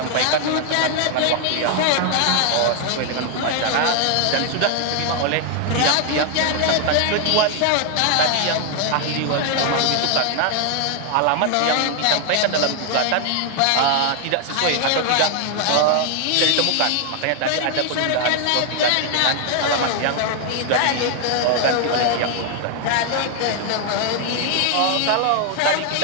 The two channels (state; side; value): different; both; correlation 0.00